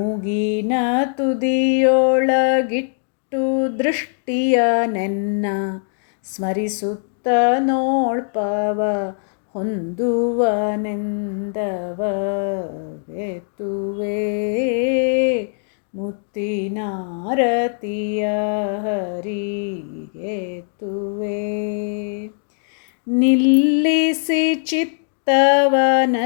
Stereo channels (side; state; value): right; silent; digital silence